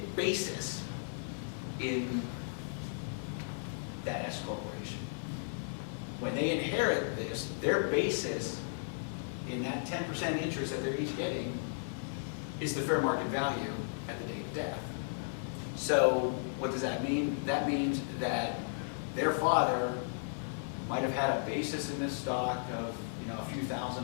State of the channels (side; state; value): right; silent; digital silence